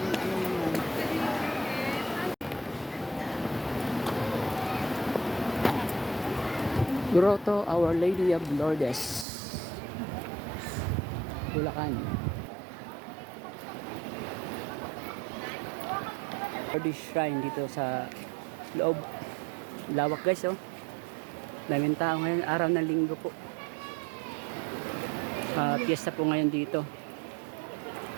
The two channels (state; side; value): drops out; left; at 9.2 s